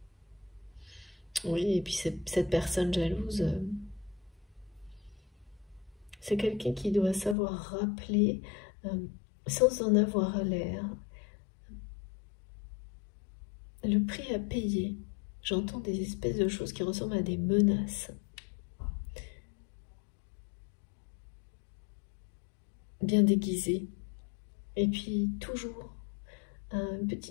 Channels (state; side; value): drops out; right; at 7.4 s